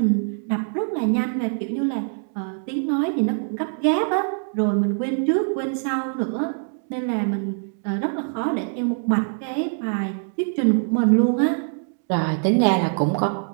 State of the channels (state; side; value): silent; left; 63 dB below the other